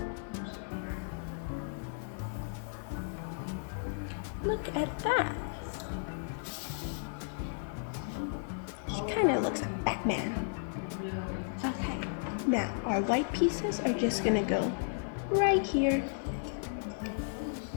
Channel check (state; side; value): silent; right; 55 dB below the other